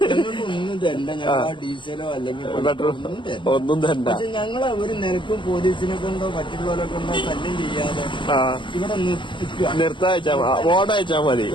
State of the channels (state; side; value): late; right; 0.23 ms